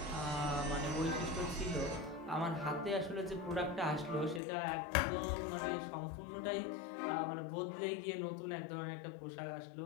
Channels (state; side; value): drops out; right; at 4.4 s